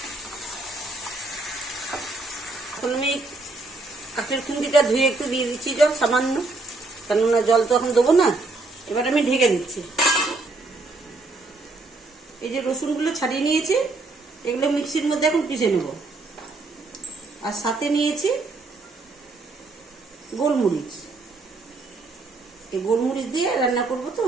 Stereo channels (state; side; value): quieter; left; 3.3 dB